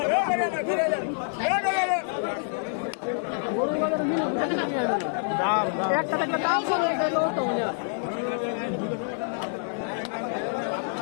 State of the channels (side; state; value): right; silent; 60 dB below the other